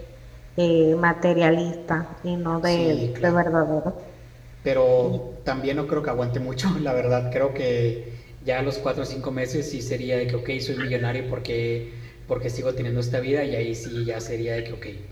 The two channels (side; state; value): both; identical; correlation 1.00